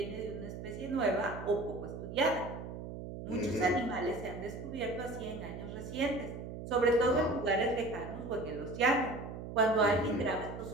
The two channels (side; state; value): right; noise; hum, 9 dB below the sound